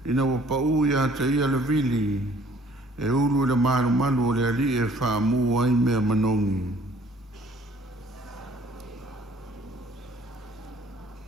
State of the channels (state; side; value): normal; both; correlation 0.57